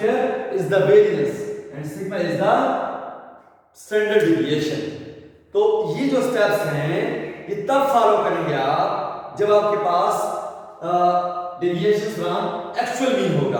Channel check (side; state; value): both; identical; correlation 1.00